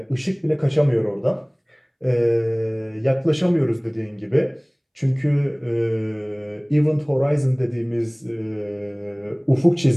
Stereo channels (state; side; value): identical; both; correlation 1.00